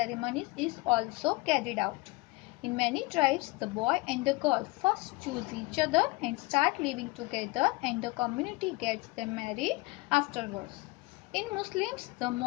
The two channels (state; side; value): quieter; right; 23.5 dB